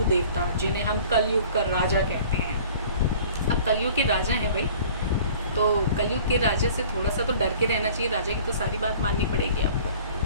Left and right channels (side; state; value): both; inverted; correlation -0.48